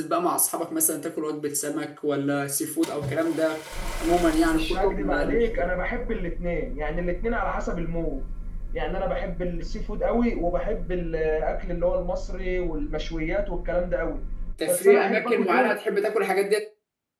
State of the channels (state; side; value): identical; both; correlation 1.00